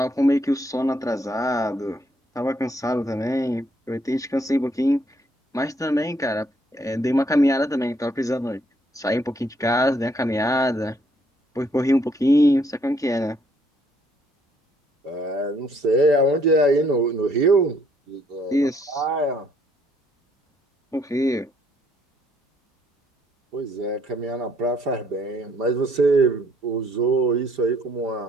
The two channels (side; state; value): both; normal; correlation 0.67